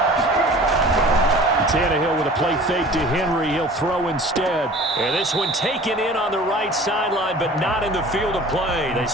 Tannehill with a play fake to Henry. He'll throw instead. And this one taken in on the right sideline, but not in the field of play. They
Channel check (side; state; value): both; normal; correlation 0.44